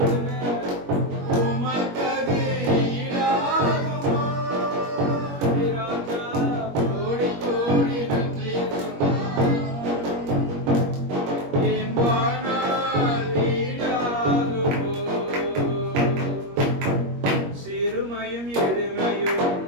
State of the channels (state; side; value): late; left; 21 ms